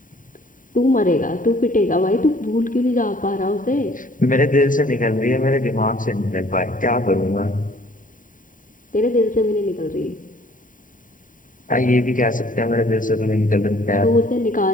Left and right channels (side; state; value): right; late; 0.39 ms